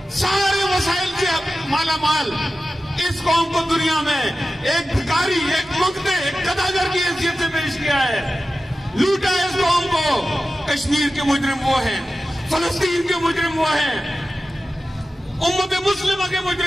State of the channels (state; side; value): normal; both; correlation 0.94